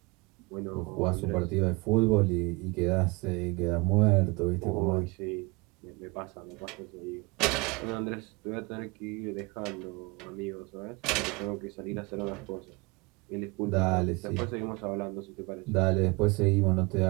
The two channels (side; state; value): left; quieter; 26.4 dB